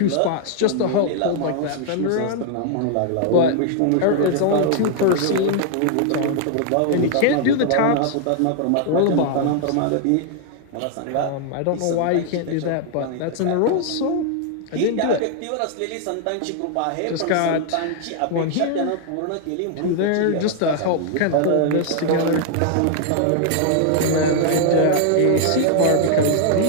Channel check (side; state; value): both; different; correlation -0.01